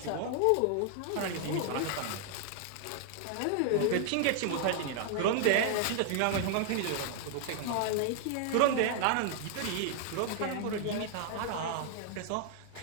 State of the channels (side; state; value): both; different; correlation 0.00